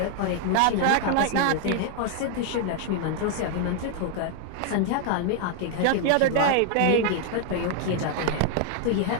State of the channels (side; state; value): both; different; correlation 0.00